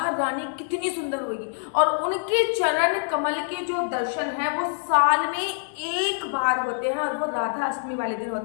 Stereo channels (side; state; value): right; silent; 60 dB below the other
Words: रानी कितनी सुंदर होगी। और उनके चरण कमल के जो दर्शन है वो साल में एक बार होते हैं और वो राधा अष्टमी वाले दिन